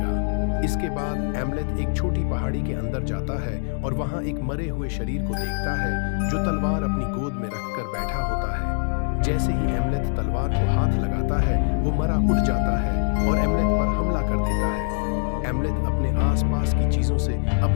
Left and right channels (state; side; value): silent; right; digital silence